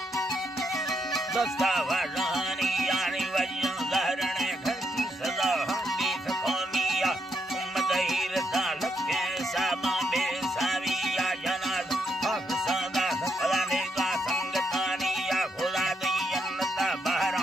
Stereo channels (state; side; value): normal; both; correlation 0.78